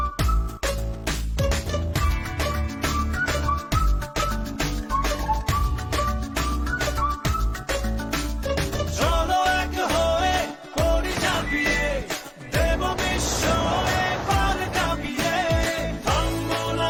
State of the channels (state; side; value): identical; both; correlation 1.00